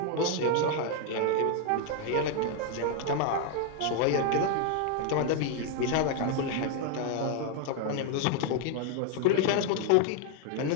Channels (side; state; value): both; different; correlation 0.01